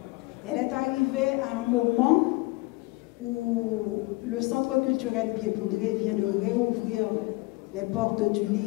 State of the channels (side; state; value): right; quieter; 23.3 dB